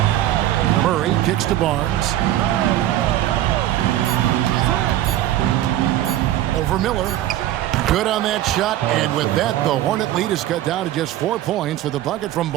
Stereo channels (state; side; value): quieter; left; 13.3 dB